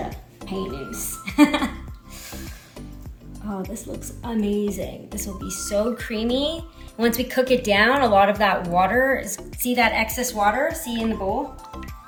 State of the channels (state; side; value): identical; both; correlation 1.00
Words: paynoose. Oh, this looks amazing. This will be so creamy. Once we cook it down, a lot of that water, see that excess water, see in the bowl?